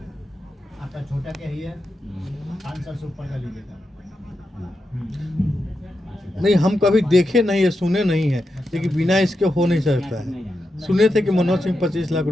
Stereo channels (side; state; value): both; normal; correlation 0.87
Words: आपका छोटा क्या ही है, 500 से ऊपर का लीजिएगा। नहीं, हम कभी देखे नहीं है, सुने नहीं है, लेकिन बिना इसके हो नहीं सकता है। सुने थे कि मनोज सिंह 25 लाख